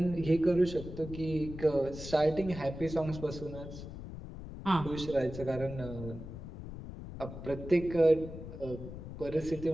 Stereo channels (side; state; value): left; noise; rumble, 11 dB below the sound